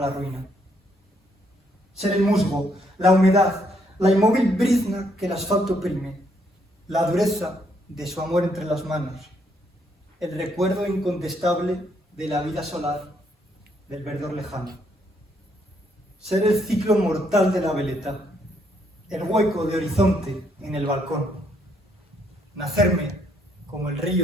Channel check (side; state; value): both; normal; correlation 0.72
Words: ruina, ser el musgo, la humedad, la inmóvil brizna que el asfalto oprime, la dureza de su amor entre las manos, el recuerdo incontestable de la vida solar del verdor lejano. Ser el ciclo mortal de la veleta, el hueco de horizonte en el balcón. Nacerme como el